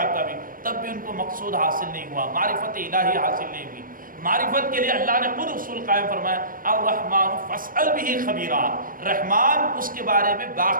کا بھی، تب بھی ان کو مقصود حاصل نہیں ہوا، معرفت الہی حاصل نہیں ہوئی. معرفت کے لیے اللہ نے خود اصول قائم فرمایا، الرحمن فاسأل به خبیرا، رحمان اس کے بارے میں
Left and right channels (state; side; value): late; left; 0.40 ms